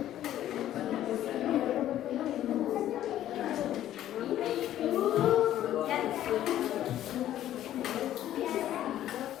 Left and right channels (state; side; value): quieter; right; 12.4 dB